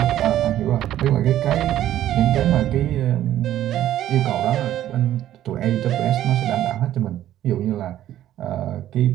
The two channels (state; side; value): quieter; left; 12.5 dB